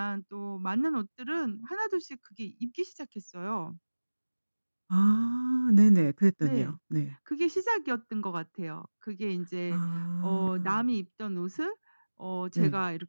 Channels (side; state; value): both; inverted; correlation -1.00